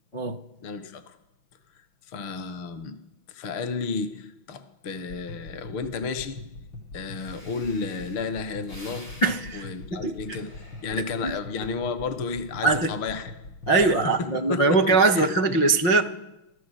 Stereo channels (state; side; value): late; right; 6.1 ms